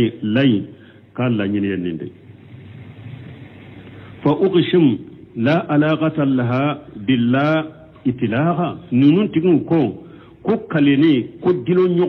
kala nyini yende fa uqshim la alaqata laha billah itlaha nunun tigun ko kaleni ko dilo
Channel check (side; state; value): both; identical; correlation 1.00